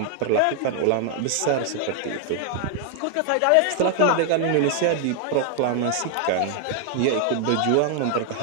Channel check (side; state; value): both; different; correlation 0.00